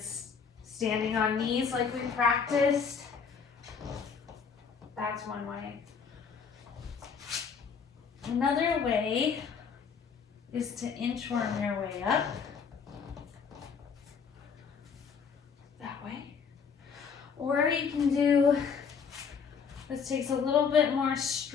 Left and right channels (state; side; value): quieter; right; 6.1 dB